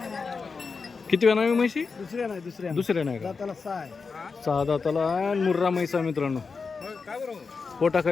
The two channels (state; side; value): quieter; right; 4.9 dB